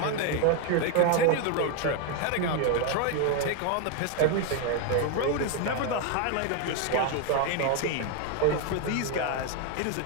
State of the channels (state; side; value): different; both; correlation 0.01